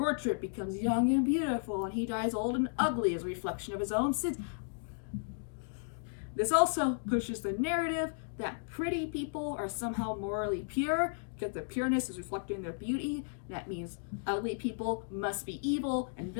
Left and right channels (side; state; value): right; silent; digital silence